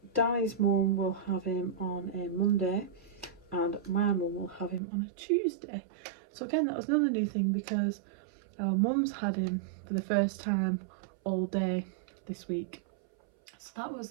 Danny's mum will have him on a Monday and my mum will have him on a Tuesday. So again, that was another new thing because our mum's had him for the first time all day this week. So that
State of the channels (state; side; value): drops out; left; at 4.8 s